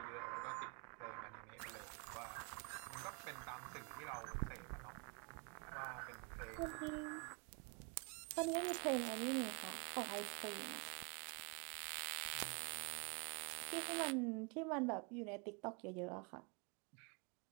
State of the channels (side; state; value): left; quieter; 33.8 dB